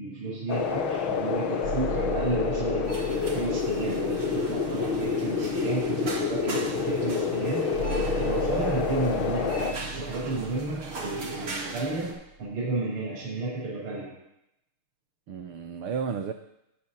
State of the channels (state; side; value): late; left; 6.5 ms